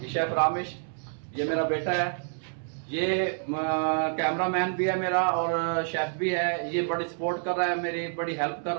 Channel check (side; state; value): left; silent; digital silence